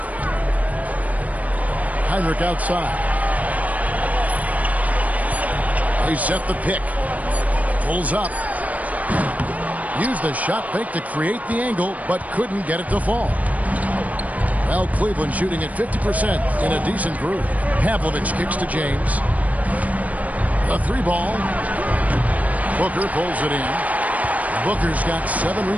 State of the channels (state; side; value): late; left; 0.071 ms